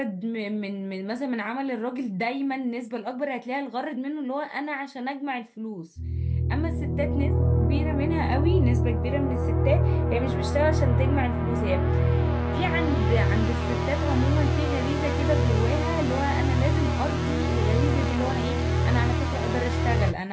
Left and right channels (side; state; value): both; identical; correlation 1.00